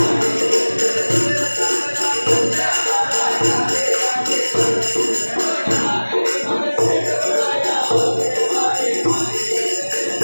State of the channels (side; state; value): both; inverted; correlation -1.00